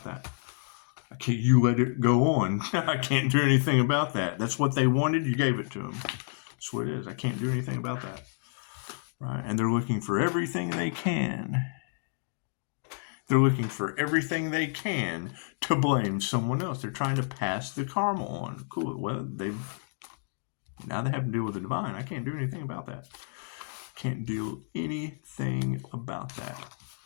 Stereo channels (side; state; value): right; silent; digital silence